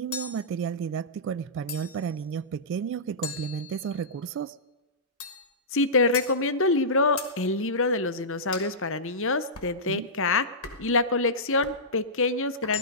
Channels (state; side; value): normal; both; correlation -0.17